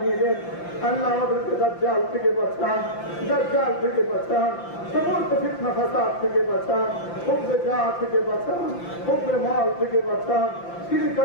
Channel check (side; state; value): right; late; 5.8 ms